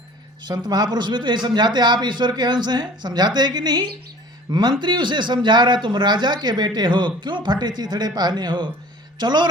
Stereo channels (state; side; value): normal; both; correlation 0.46